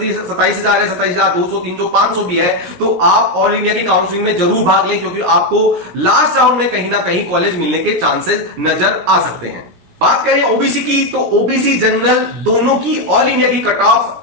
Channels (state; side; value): late; left; 17 ms